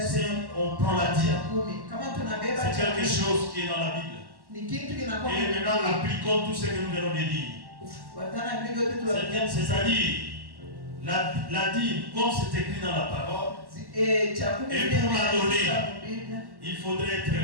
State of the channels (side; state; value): left; late; 1.1 ms